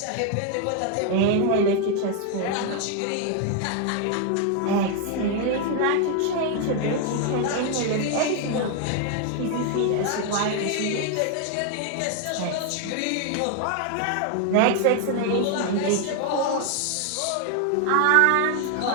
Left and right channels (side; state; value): both; different; correlation 0.00